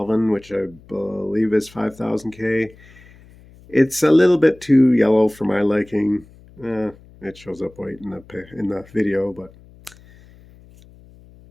which I believe is 5000K. It's a little bit too yellow for my liking. It shows up white in the video, but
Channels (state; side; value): noise; left; hum, 24 dB below the sound